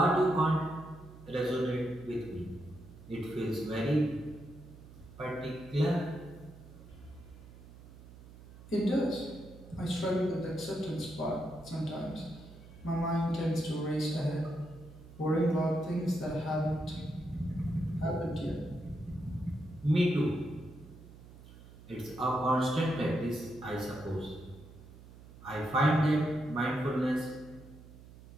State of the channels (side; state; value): right; noise; hum, 19 dB below the sound